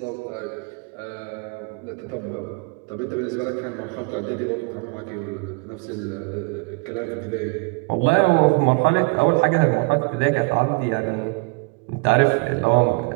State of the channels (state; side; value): quieter; left; 31.0 dB